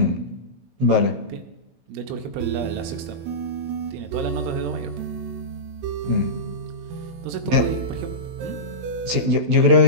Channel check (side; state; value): left; late; 16 ms